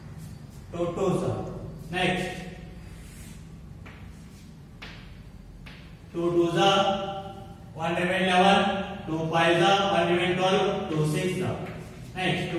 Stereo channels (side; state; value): both; identical; correlation 1.00